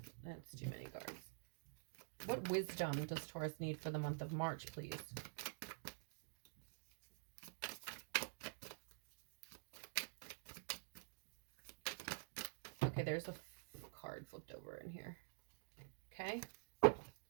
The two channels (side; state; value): left; silent; digital silence